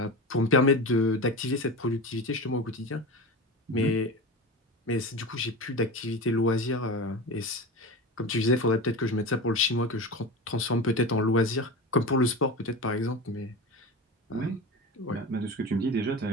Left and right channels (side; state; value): both; normal; correlation 0.27